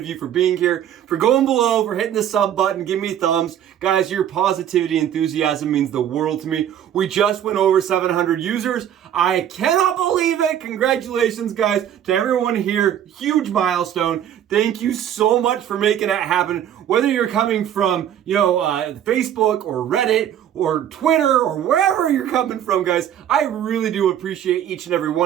you for being here, for going below, for hitting the sub button, giving me thumbs. Guys, your positivity, enthusiasm means the world to me. We just went over 700 users. I cannot believe it. Congratulations, guys, to everyone here. Huge milestone. Thank you so much for making that happen. Whether you're coming from, Facebook or Reddit or Twitter or wherever you're coming from, guys, I really do appreciate each and every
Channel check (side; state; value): left; quieter; 10.3 dB